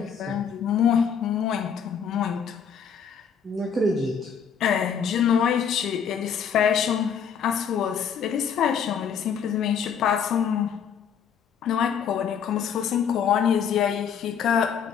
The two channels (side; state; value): right; quieter; 7.3 dB